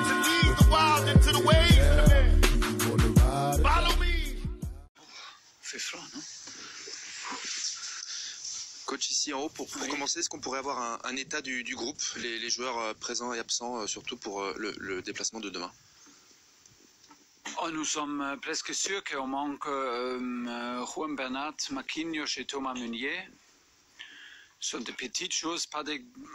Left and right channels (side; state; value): both; identical; correlation 1.00